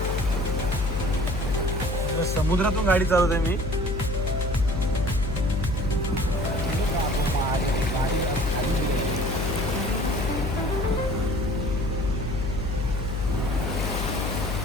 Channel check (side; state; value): left; noise; hum, 2 dB below the sound